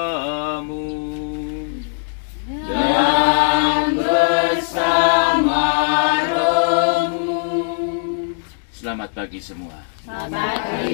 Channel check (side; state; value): right; silent; digital silence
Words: dan bersama rohmu. Selamat pagi semua. Selamat